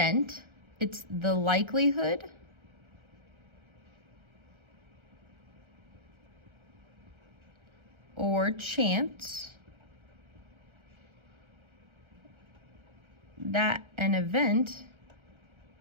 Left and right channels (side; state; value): left; late; 1.3 ms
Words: It's the likelihood or chance that an event